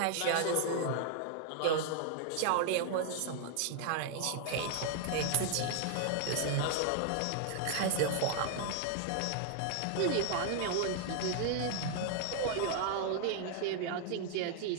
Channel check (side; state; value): both; different; correlation 0.00